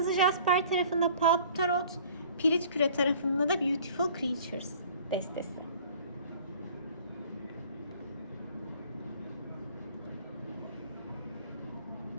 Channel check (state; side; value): inverted; both; correlation -0.50